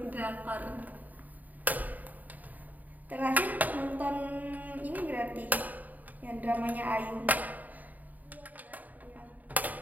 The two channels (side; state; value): left; late; 0.080 ms